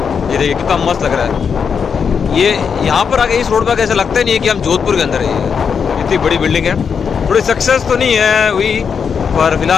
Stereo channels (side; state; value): right; quieter; 6.5 dB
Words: ये देखिए कितना मस्त लग रहा है। ये यहाँ पर आके इस रोड पर कैसे लगता ही नहीं है कि हम जोधपुर के अंदर है। इतनी बड़ी बिल्डिंग है, थोड़ी सक्सेस तो नहीं है हुई, पर